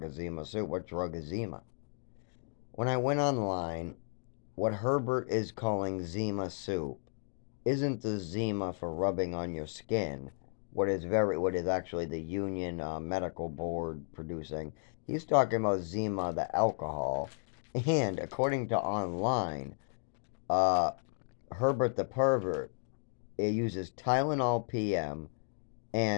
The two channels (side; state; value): right; silent; digital silence